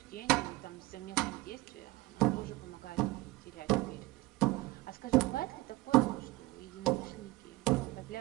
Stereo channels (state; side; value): quieter; left; 20.6 dB